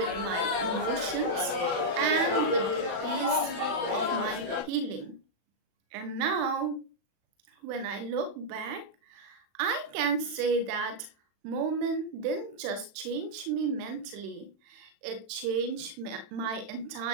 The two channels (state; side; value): late; left; 35 ms